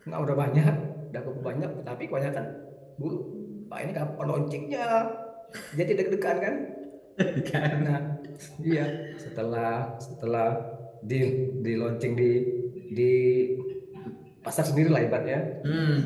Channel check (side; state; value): both; identical; correlation 1.00